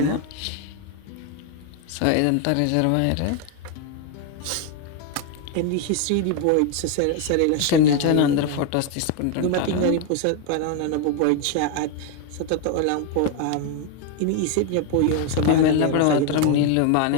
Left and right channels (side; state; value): both; different; correlation 0.01